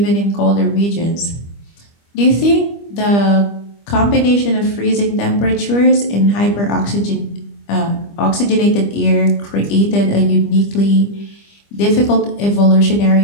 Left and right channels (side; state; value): right; late; 25 ms